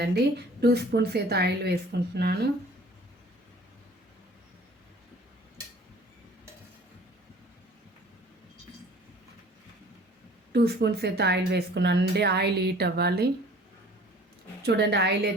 2 స్పూన్స్ అయితే ఆయిల్ వేసుకుంటున్నాను. 2 స్పూన్స్ అయితే ఆయిల్ వేసుకున్నానండి. ఆయిల్ హీట్ అవ్వాలి. చూడండి, ఆయిల్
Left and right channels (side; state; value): both; normal; correlation 0.50